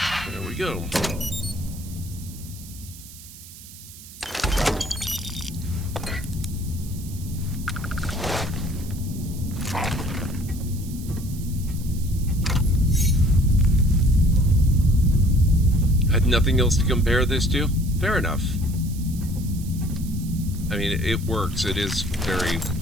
There we go. Had nothing else to compare this to? Fair enough. I mean, it works. It is very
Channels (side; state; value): right; noise; hiss, 17 dB below the sound